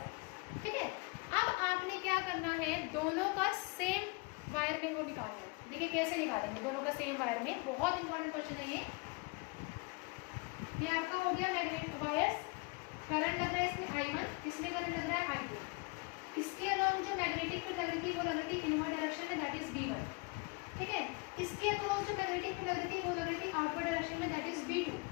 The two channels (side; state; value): right; quieter; 28.9 dB